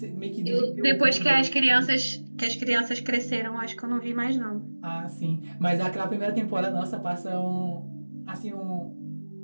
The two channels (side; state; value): both; inverted; correlation -1.00